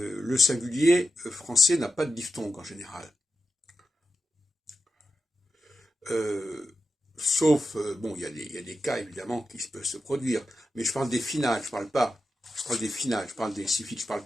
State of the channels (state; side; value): normal; both; correlation 0.89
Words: singulier français n'a pas de diphtongue en général. Sauf, bon, il y a des cas évidemment qui peuvent se produire, mais je parle des finales, je parle des finales, je parle des suffixes, je parle